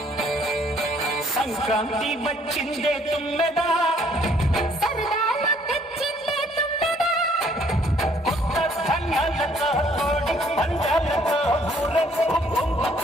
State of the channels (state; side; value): normal; both; correlation 0.63